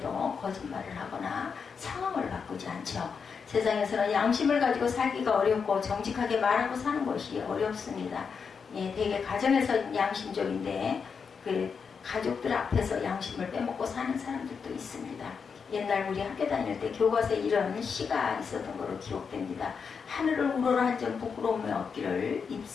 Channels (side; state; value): right; quieter; 5.9 dB